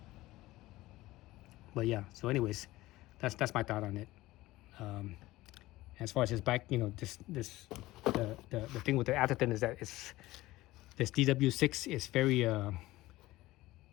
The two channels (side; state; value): right; quieter; 17.8 dB